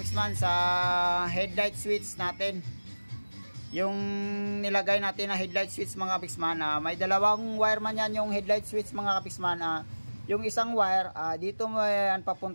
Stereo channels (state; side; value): inverted; both; correlation -1.00